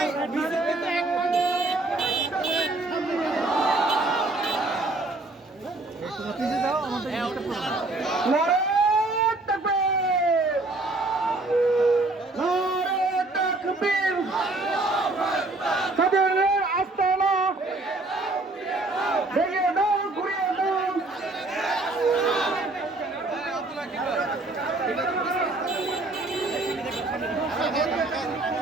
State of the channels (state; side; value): quieter; left; 3.0 dB